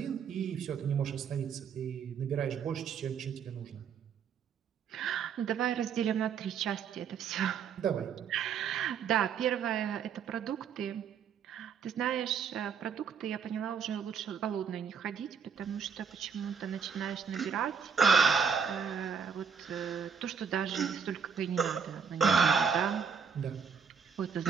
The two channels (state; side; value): quieter; left; 6.7 dB